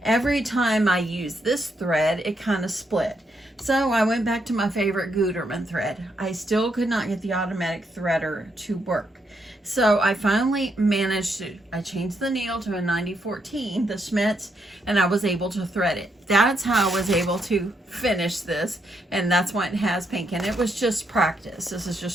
every time I used this thread, it kind of split. So I went back to my favorite Gutermann thread. I still could not get the automatic threader to work. So I finally managed to, I changed the needle to a 9014, the Schmitz, and I was able to thread it. That's how I was able to finish this, and that's why it has pink. And it was just practice. This is just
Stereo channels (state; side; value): normal; both; correlation 0.78